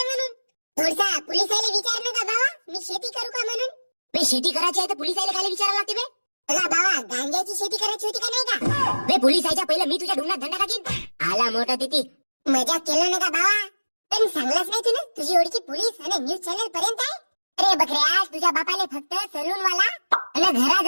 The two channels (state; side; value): inverted; both; correlation -1.00